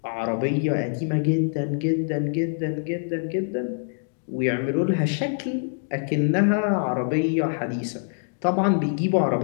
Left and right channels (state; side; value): silent; right; digital silence